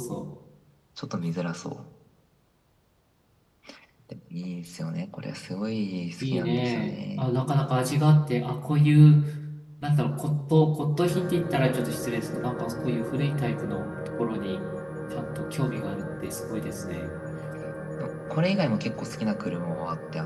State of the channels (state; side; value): identical; both; correlation 1.00